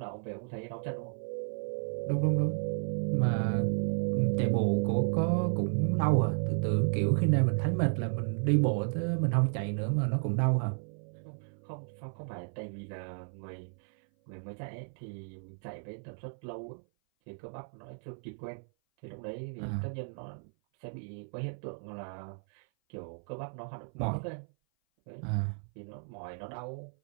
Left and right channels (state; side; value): silent; left; 56 dB below the other